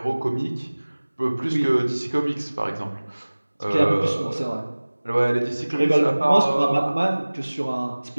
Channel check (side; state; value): both; inverted; correlation -1.00